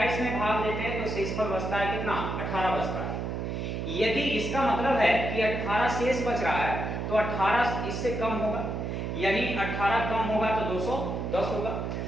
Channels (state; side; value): noise; right; hum, 3 dB below the sound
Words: में भाग देते हैं तो शेषफल बचता है कितना 18 बचता है। यदि इसका मतलब है कि 18 शेष बच रहा है तो 18 इससे कम होगा, यानी 18 कम होगा तो 210 होगा।